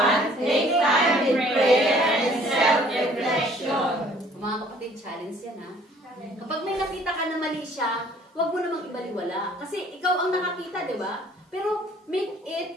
take time in prayer and self-reflection. Mga kapatid, challenge yan ha. Kapag may nakita ka na mali siya, huwag mo namang ibaliwala. Kasi ikaw ang nakakita, di ba? Pero make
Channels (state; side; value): normal; both; correlation 0.56